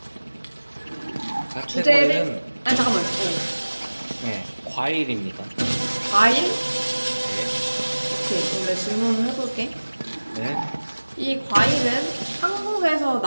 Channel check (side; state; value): both; inverted; correlation -1.00